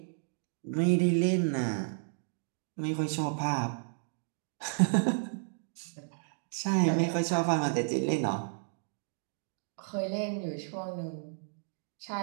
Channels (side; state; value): left; silent; digital silence